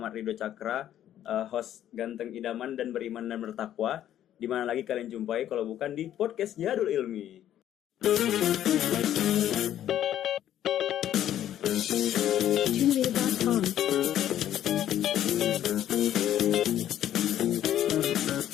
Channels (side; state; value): right; quieter; 11.5 dB